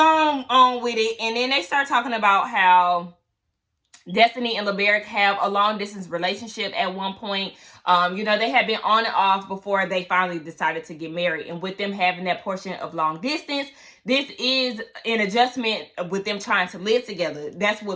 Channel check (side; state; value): both; identical; correlation 1.00